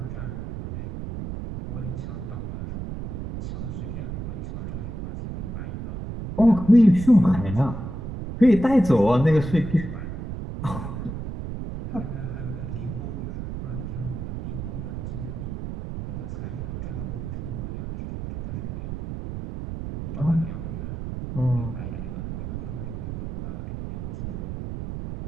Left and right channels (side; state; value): right; noise; rumble, 6 dB below the sound